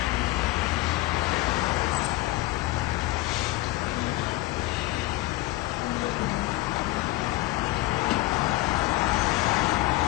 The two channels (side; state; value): right; quieter; 18.6 dB